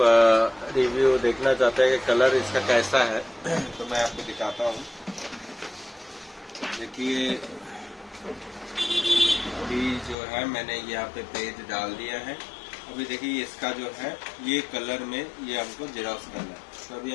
रिव्यू देखना चाहते हैं कि कलर इसका कैसा है तो मैं आपको दिखाता हूँ। देखिए अभी जो है मैंने यहाँ पे पेज डाल दिया है। अभी देखिए इसका जो है ये कलर में ये हमको जेरॉक्स करना है। तो अभी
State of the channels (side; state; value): right; drops out; at 10.2 s